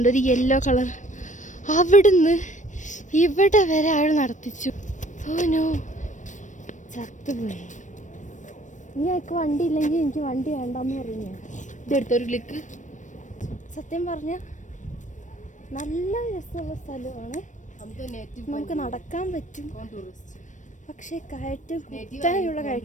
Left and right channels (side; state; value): right; late; 0.36 ms